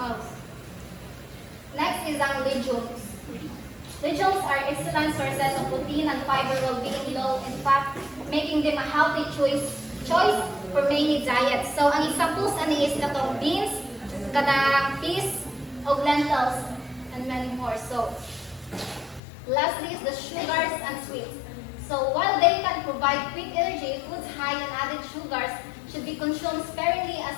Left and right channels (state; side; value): drops out; right; at 19.2 s